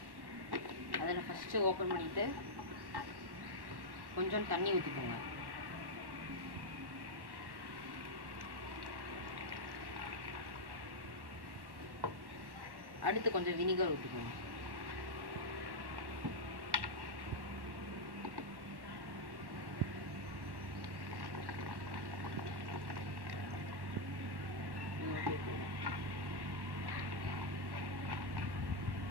அதில் ஃபஸ்ட்டு ஓப்பன் பண்ணிவிட்டு கொஞ்சம் தண்ணி ஊற்றிக்கோங்க. அடுத்து கொஞ்சம் வினிகர் ஊற்றிக்கோங்க.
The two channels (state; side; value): late; left; 1.1 ms